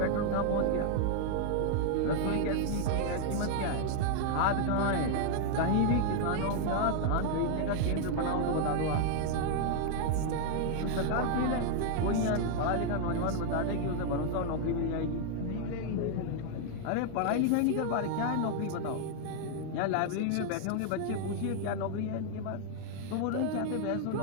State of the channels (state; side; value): different; both; correlation 0.00